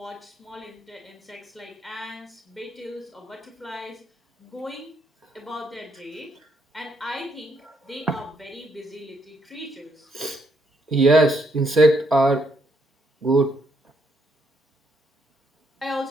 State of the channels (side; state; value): both; normal; correlation 0.73